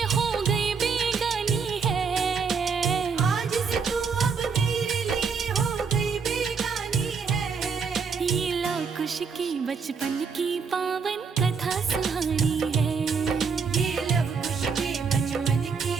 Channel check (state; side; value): quieter; left; 5.6 dB